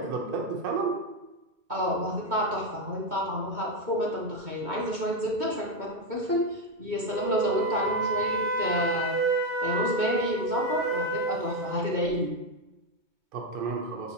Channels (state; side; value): late; left; 2.2 ms